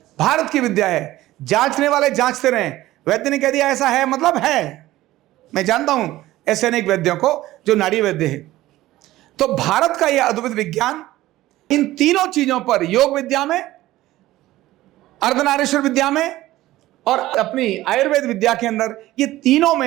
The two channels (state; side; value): quieter; left; 16.2 dB